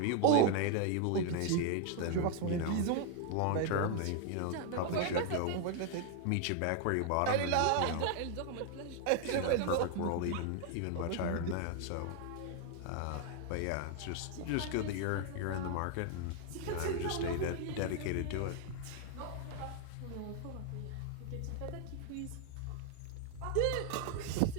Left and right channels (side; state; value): both; different; correlation 0.00